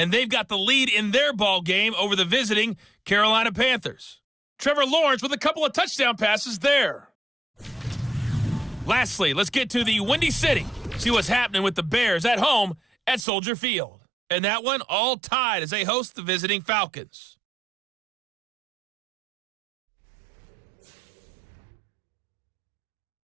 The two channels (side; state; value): left; drops out; at 13.2 s